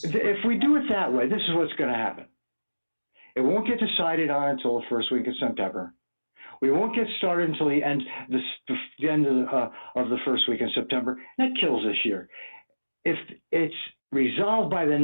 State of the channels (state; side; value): inverted; both; correlation -1.00